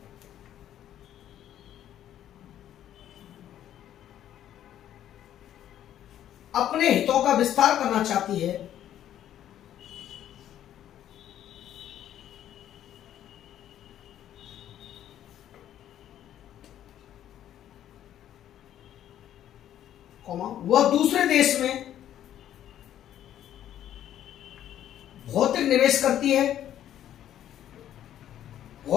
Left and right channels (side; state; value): right; quieter; 11.3 dB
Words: अपने हितों का विस्तार करना चाहती है वह दूसरे देश में भौतिक निवेश करती